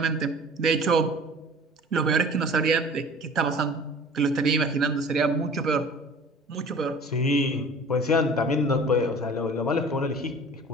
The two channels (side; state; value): both; normal; correlation 0.44